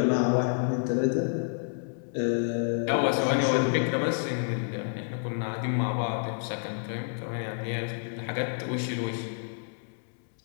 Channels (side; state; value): right; silent; 59 dB below the other